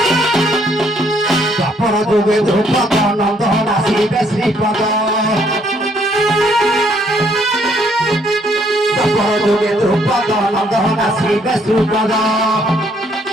द्वापर जुगे ध्रुपद नंदन आसिबे श्रीपद द्वापर जुगे ध्रुपद नंदन आसिबे श्रीपद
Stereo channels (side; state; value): both; normal; correlation 0.68